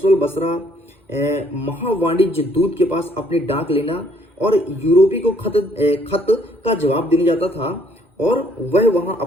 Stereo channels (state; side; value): normal; both; correlation 0.64